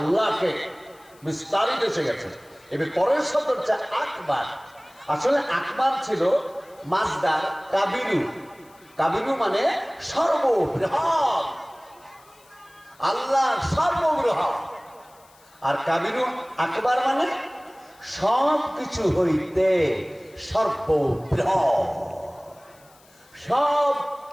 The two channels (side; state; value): left; noise; hiss, 29 dB below the sound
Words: বিস্তারিত এসে গেছে। এবার পরের শব্দ হচ্ছে আকবার। আসলে আকবার ছিল মাজদার কাবিরু। কাবিরু মানে সর্ববৃহৎ, আল্লাহ সর্ববৃহৎ। আর কাবিরু আকবার মানে সব কিছু হইতে সর্ববৃহৎ, সব